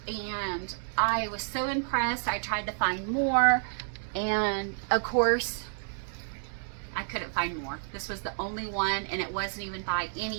And I was so impressed. I tried to find more. And of course, I couldn't find more. This was the only one, and it wasn't even by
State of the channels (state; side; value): silent; left; digital silence